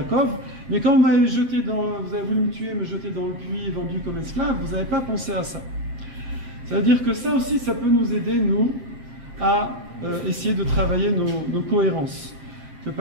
mais quand vous avez voulu me tuer, me jeter dans le puits, vendu comme esclave, vous n'avez pas pensé à ça. Ça veut dire que ça aussi, ça peut nous aider, nous, à essayer de travailler nos cohérences. Que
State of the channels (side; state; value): left; late; 7.2 ms